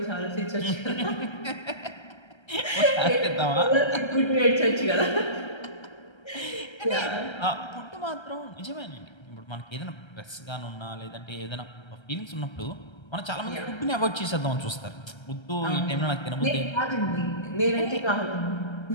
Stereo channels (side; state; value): right; late; 1.3 ms